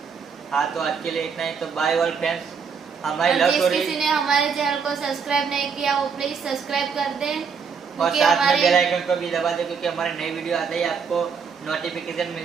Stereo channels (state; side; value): quieter; left; 6.1 dB